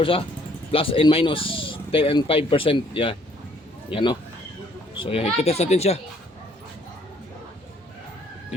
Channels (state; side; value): normal; both; correlation 0.63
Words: plus and minus 10 and 5%. Yan, so yan, ititest natin siya.